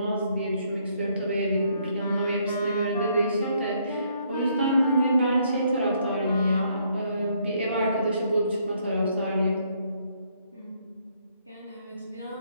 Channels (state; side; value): inverted; both; correlation -0.69